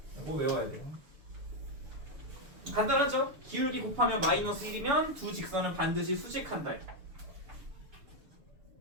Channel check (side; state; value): left; late; 6.8 ms